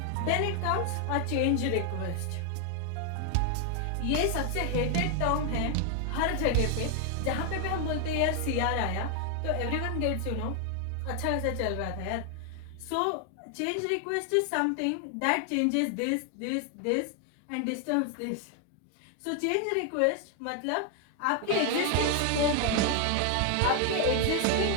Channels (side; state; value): both; different; correlation 0.00